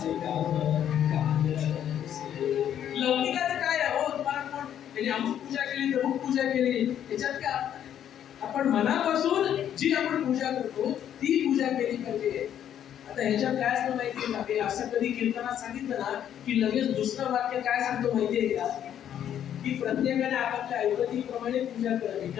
काम लौकिकाचं काय आहे हो? तुम्हाला कोण त्यांनी अमुक पूजा केली तमुक पूजा केली त्याच्यात काय? आपण मनापासून जी आपण पूजा करतो ती पूजा केली पाहिजे. आता ह्याच्यात काय असतं माहितीये का? हे असं कधी कीर्तनात सांगितलं ना की लगेच दुसरं वाक्य काय सांगतो माहितीये का? की प्रत्येकाने आपापल्या ऐपतीप्रमाणे पूजा करावी,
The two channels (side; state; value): right; quieter; 10.0 dB